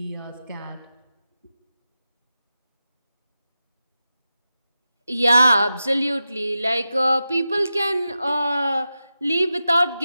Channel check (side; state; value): both; inverted; correlation -0.92